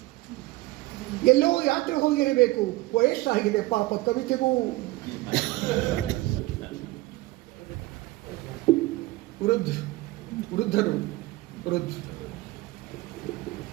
ಎಲ್ಲೋ ಯಾತ್ರೆ ಹೋಗಿರಬೇಕು. ವಯಸ್ಸಾಗಿದೆ ಪಾಪ ಕವಿತೆಗೂ. ವೃದ್ಧರು.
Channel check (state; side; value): quieter; left; 19.4 dB